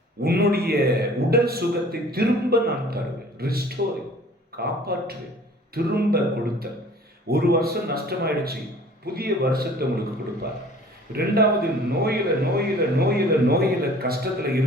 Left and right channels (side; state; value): both; normal; correlation 0.49